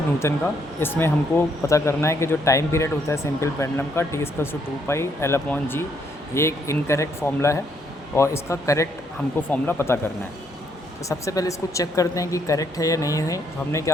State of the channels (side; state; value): both; normal; correlation 0.72